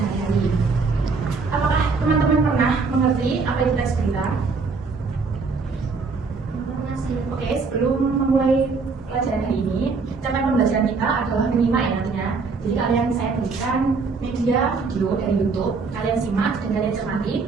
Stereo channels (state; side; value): quieter; left; 4.5 dB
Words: Apakah teman-teman pernah mengerti apa itu teks berita? Oke, sebelum memulai pelajaran hari ini, capaian pembelajaran kita adalah menyimak ya nantinya. Jadi kalian saya berikan media video dari YouTube, kalian simak dan kalian